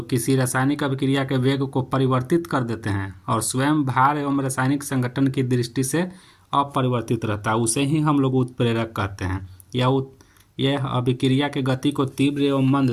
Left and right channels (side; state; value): both; identical; correlation 1.00